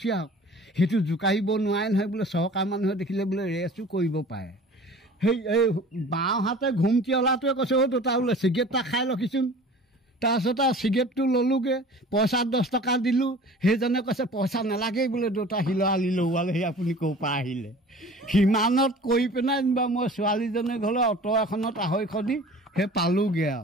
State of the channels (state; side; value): normal; both; correlation 0.44